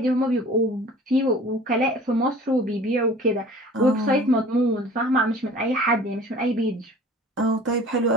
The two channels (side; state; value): both; normal; correlation 0.45